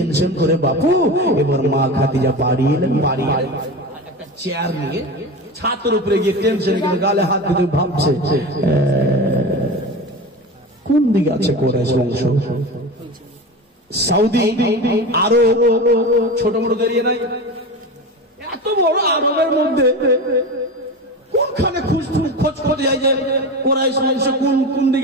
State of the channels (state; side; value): normal; both; correlation 0.27